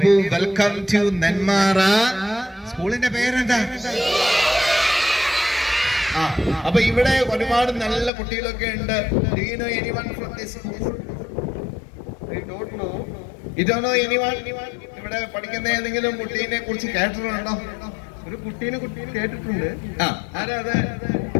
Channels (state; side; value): drops out; right; at 8.1 s